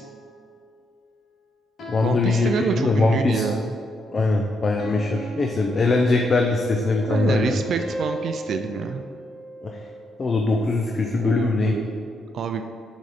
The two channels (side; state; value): both; normal; correlation 0.78